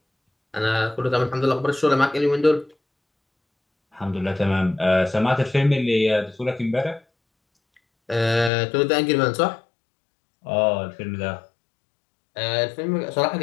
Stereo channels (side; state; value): right; drops out; at 8.5 s